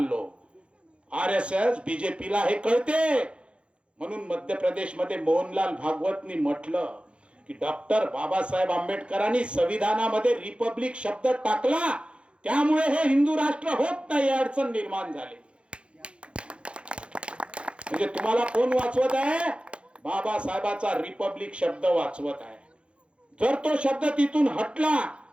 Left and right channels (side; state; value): left; late; 0.058 ms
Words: RSS बीजेपीला हे कळते. म्हणून मध्य प्रदेशमध्ये मोहनलाल भागवतनी म्हटलं की डॉक्टर बाबासाहेब आंबेडकरांनी संविधानामध्ये रिपब्लिक शब्द टाकला, त्यामुळे हे हिंदू राष्ट्र होत नाही, अडचण निर्माण झाली. म्हणजे तुम्हाला कोण वाचवत आहे? बाबासाहेबाचा रिपब्लिक शब्द वाचवत आहे. जर तो शब्द तिथून हटला